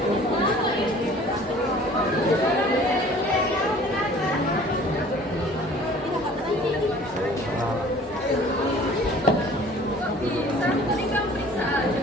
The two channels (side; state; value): both; normal; correlation 0.49